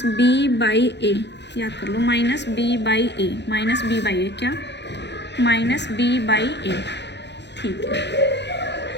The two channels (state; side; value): late; right; 0.50 ms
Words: याद कर लो, -b/a, -b/a क्या, -b/a, ठीक है।